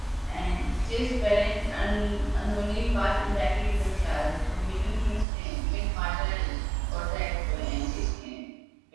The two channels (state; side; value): drops out; left; at 5.2 s